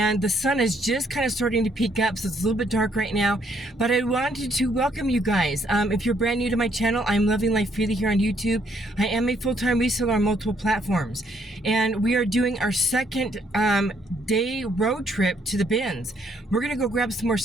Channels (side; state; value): both; normal; correlation 0.69